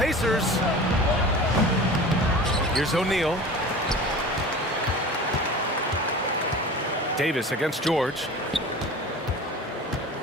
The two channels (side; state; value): both; normal; correlation 0.37